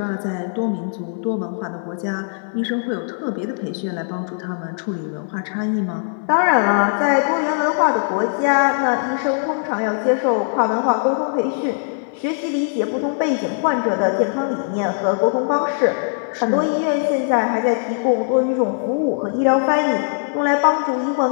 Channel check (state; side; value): silent; right; digital silence